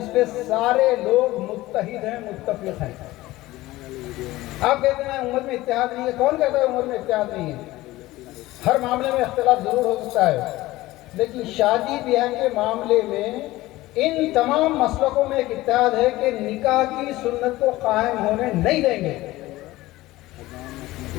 پہ سارے لوگ متحد ہیں، متفق ہیں۔ آپ کہتے ہیں امت میں اتحاد نہیں ہے، کون کہتا ہے امت میں اتحاد نہیں ہے؟ ہر معاملے میں اختلاف ضرور ہو سکتا ہے، لیکن شادی بیاہ کے معاملے میں ان تمام مسلکوں میں ایک اتحاد ہے کہ نکاح کی سنت کو قائم ہونے نہیں دیں گے۔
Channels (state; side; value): quieter; right; 17.9 dB